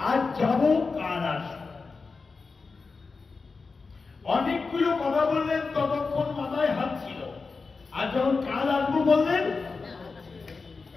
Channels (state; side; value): quieter; right; 4.4 dB